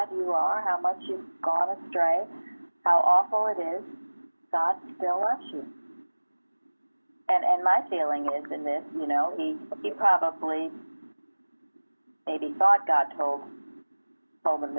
you are, how much you've gone astray, how awful it is, God still loves you. And my feeling is in this, you know, he probably maybe thought God told him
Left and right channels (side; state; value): both; inverted; correlation -1.00